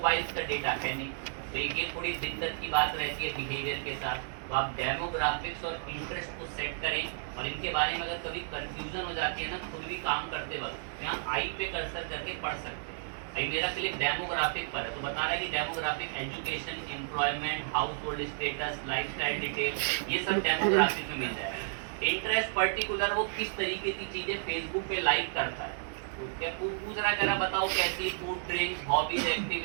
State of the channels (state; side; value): silent; left; digital silence